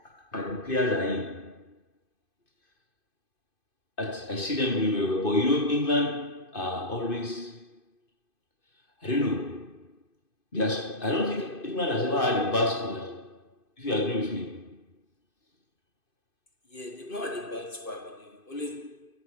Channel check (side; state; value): right; late; 2.5 ms